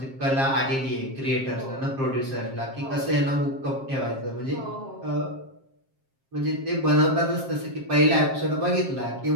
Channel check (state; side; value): late; left; 7.5 ms